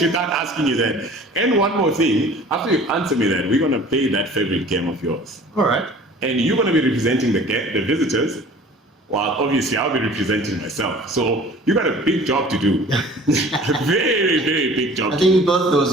without asking you that. And one more thing, after you answer me that, we're gonna play that favorite game of yours, All right. and you're gonna be representing the visitors. While obviously I'll be representing myself. So you got a big job to do. A very, very big job. I think we both those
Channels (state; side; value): normal; both; correlation 0.47